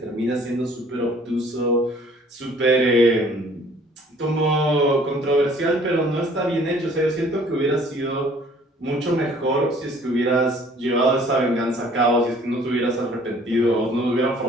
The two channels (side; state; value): both; normal; correlation 0.55